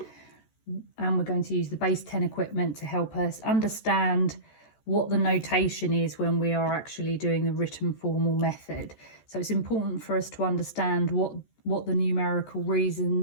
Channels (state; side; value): late; right; 14 ms